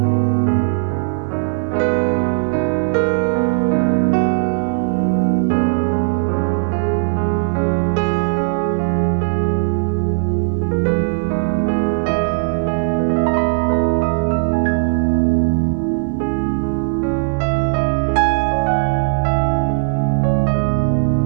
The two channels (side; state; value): left; silent; digital silence